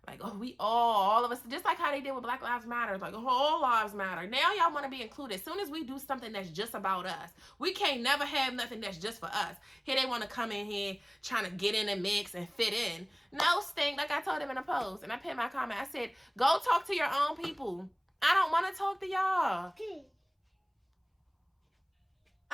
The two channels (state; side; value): identical; both; correlation 1.00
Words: Like, oh, we all of us, just like how they did with Black Lives Matter. Like, all lives matter. Now y'all want to be included. As soon as we do something that's just about us, we can't never have nothing that's just for us. Here they want to come in here trying to get in the mix and fit in. No, stink. Like I told them in a post, and I put in my comment, I said, go talk to your own people. I don't want to talk to y'all.